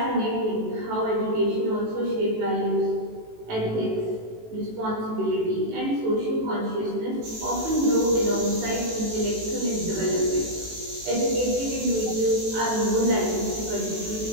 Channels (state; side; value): late; left; 18 ms